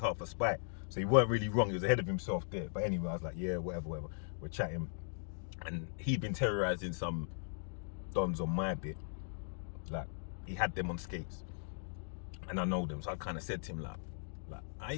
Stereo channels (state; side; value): silent; right; digital silence